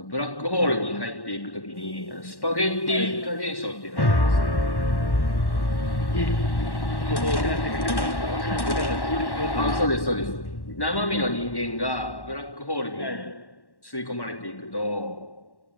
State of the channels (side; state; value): right; late; 1.1 ms